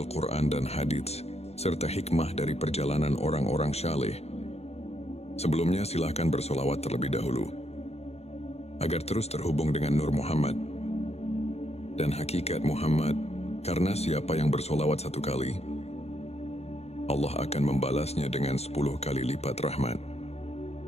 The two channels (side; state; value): right; late; 0.31 ms